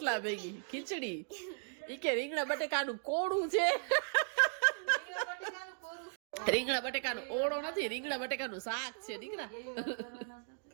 ભેગી ખીચડી ઈ કે રીંગણા બટેકાનું કોળું છે રીંગણા બટેકાનો ઓળો નથી રીંગણા બટેકાનું શાક છે દીકરા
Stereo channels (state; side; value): silent; left; 53 dB below the other